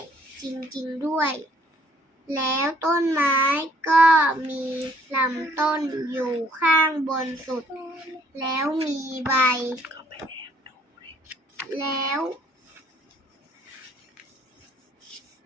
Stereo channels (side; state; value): both; normal; correlation 0.63